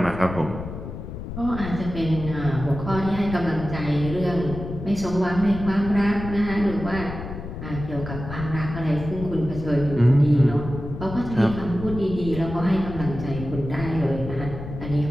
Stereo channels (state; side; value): noise; left; rumble, 9 dB below the sound